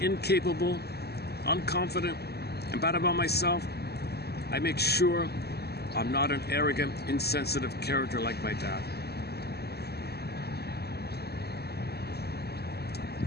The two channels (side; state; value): right; late; 0.47 ms